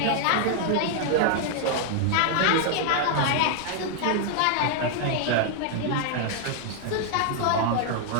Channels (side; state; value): both; different; correlation 0.00